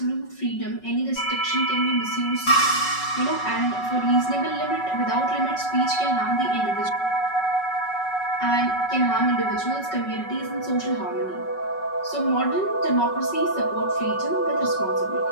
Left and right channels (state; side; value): late; right; 5.4 ms